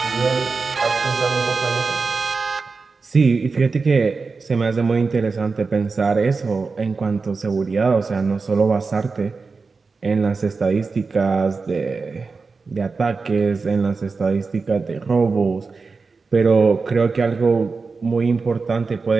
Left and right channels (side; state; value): left; quieter; 4.4 dB